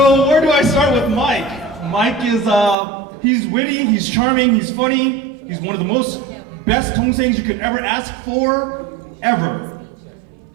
where do I start with Mike? Mike is, he's witty, he's charming, he's funny. He's one of the best dongsangs you could ever ask for, ever.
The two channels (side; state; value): left; drops out; at 2.8 s